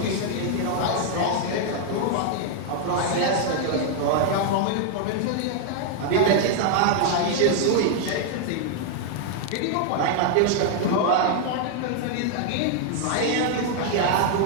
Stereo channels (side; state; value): both; different; correlation 0.00